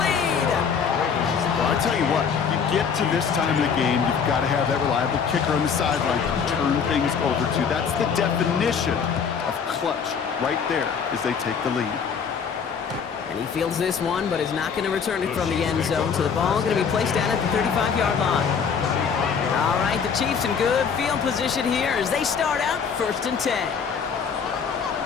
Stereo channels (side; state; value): right; quieter; 6.5 dB